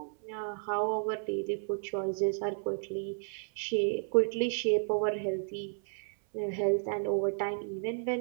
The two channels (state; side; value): silent; left; 56 dB below the other